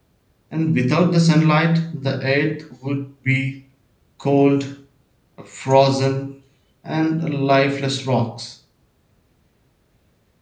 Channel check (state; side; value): identical; both; correlation 1.00